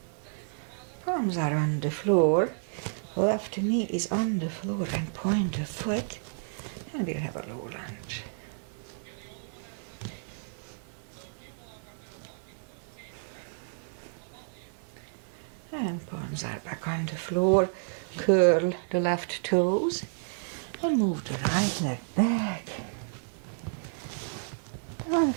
Palms are on the floor. Left knee is on the floor and point the foot. And we'll have a low lunge. And palms are back on the floor. Curl the left toes. And move the right leg back. Down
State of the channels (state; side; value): silent; left; 57 dB below the other